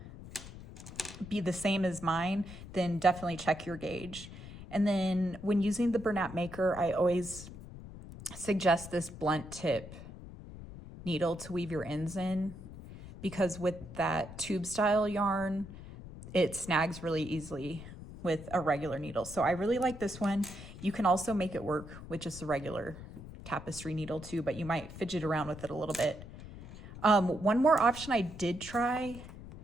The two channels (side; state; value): left; noise; rumble, 14 dB below the sound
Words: be the same as mine, then definitely check your gauge. And then when using the Bernat Maker, I always suggest this blunt tip needle to weave your ends in, because with that tube style yarn, it snags really easily with a regular needle. So I really like this one. You can also make it work with just a regular tapestry needle too, but you might fidget around with it a little bit. One more option I did try,